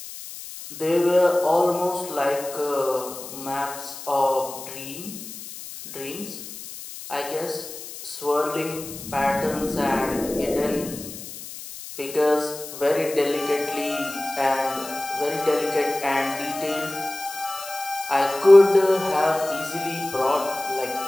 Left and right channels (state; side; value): noise; left; hiss, 12 dB below the sound